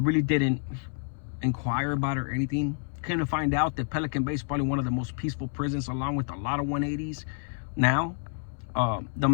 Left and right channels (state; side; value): silent; right; 59 dB below the other